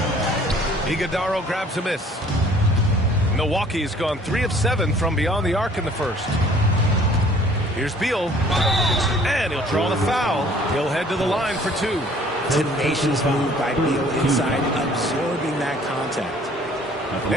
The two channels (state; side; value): normal; both; correlation 0.55